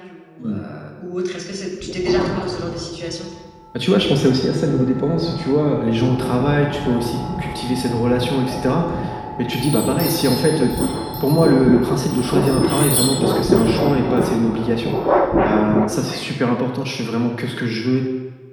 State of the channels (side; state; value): both; identical; correlation 1.00